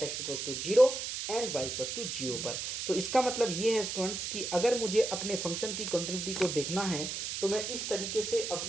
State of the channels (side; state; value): right; noise; hiss, 4 dB below the sound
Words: x equals to zero and Y equals to zero पर। तो इसका मतलब ये है स्टूडेंट्स कि अगर मुझे अपने फंक्शन की कंटिन्यूटी को देखना है तो मैं इस तरीके से